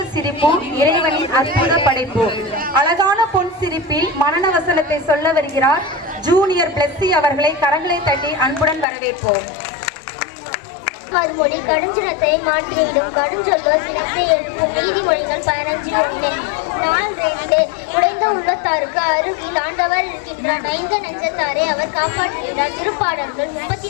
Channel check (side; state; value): right; drops out; at 8.8 s